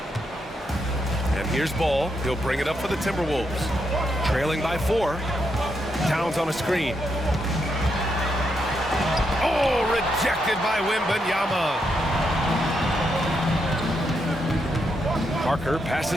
And here's Ball. He'll bring it up for the Timberwolves. Trailing by 4. Towns on a screen. Oh, rejected by Wembanyama. Parker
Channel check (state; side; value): normal; both; correlation 0.81